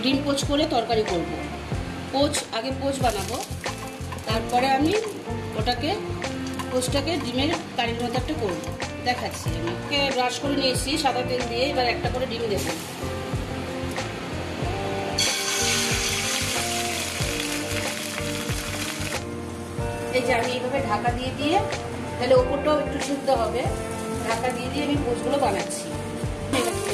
ডিম পোচ করে তরকারি করব। আগে পোচ বানাবো, তারপরে আমি পোচটাকে ডিমের কারির মতো একটা করবো, দেখাচ্ছি। আমি ব্রাশ করে নিয়েছি সাদা তেল দিয়ে, এবার একটা করে ডিম দেবো। এই যে আমি এইভাবে ঢাকা দিয়ে দিয়ে, তাহলে ওপরটাও একটু সিদ্ধ হবে, ঢাকা দিয়ে দিয়ে আমি পোচগুলো বানাচ্ছি।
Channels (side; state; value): both; identical; correlation 1.00